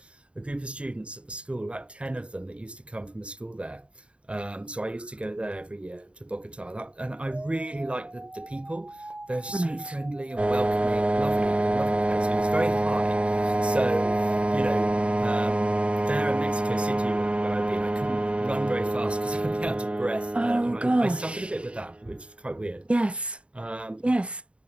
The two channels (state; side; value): late; left; 0.059 ms